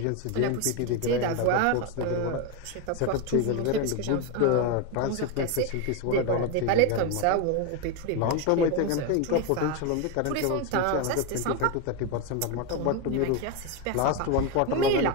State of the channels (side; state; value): both; different; correlation 0.02